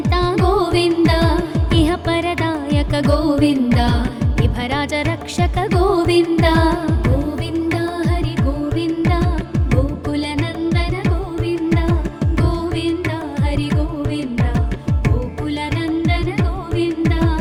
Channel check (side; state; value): both; identical; correlation 1.00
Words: గోవింద ఇహ పరదాయక గోవింద విభరాజ రక్షక గోవింద గోవింద హరి గోవింద గోకుల నందన గోవింద గోవింద హరి గోవింద గోకుల నందన గోవింద